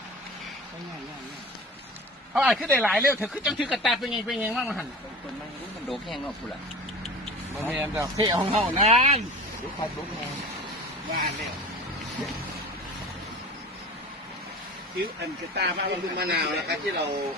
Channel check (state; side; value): normal; both; correlation 0.36